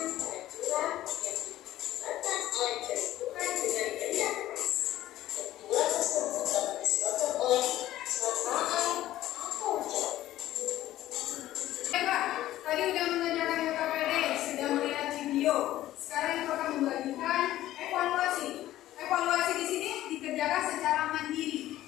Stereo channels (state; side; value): quieter; right; 14.3 dB